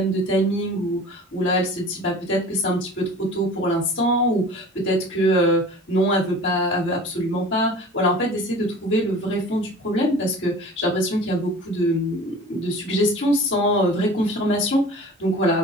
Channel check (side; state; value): both; normal; correlation 0.41